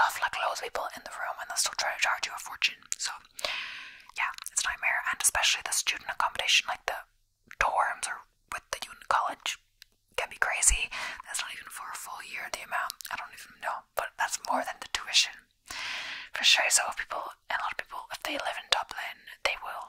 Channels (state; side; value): identical; both; correlation 1.00